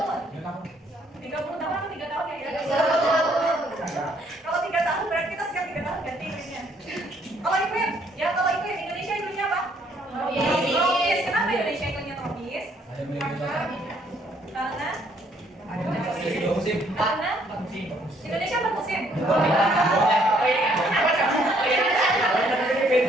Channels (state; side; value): normal; both; correlation 0.66